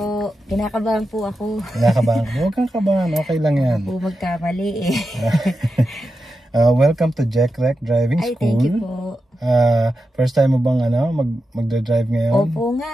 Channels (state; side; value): normal; both; correlation 0.89